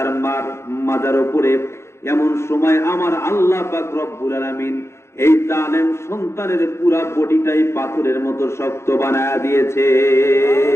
মার মাজার উপরে, এমন সময় আমার আল্লাহ পাক রব্বুল আলামিন এই জালেম সন্তানের পুরা বডিটাই পাথরের মতো শক্ত বানায়া দিয়েছে।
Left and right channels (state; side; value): late; right; 0.13 ms